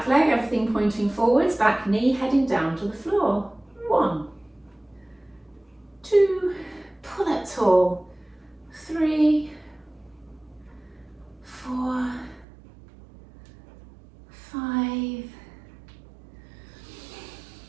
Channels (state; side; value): drops out; left; at 12.5 s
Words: leg, everything pointing forwards, back knee heading down to the floor. 1, 2, pull up tall. 3, 4, 5,